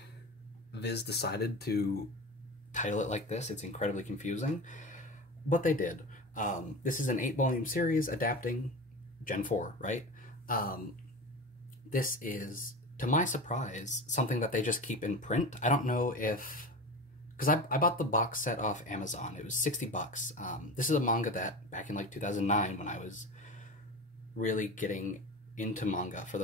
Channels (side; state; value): both; normal; correlation 0.29